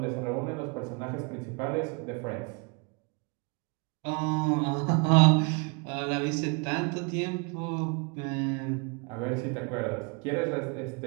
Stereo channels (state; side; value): quieter; left; 33.6 dB